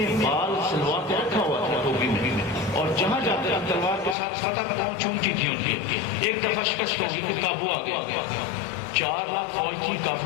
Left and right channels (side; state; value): right; drops out; at 4.2 s